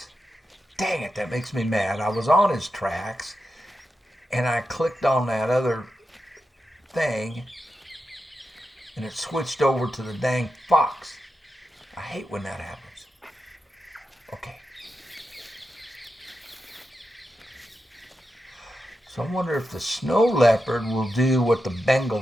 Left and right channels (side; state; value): both; normal; correlation 0.88